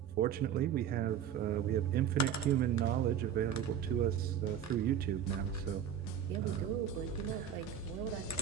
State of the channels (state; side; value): quieter; left; 8.9 dB